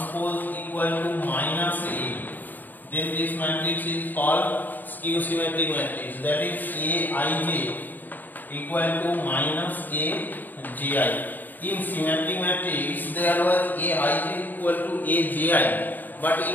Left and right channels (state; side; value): late; right; 0.088 ms